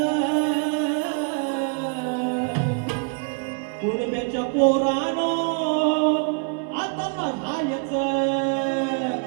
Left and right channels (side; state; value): left; quieter; 39.4 dB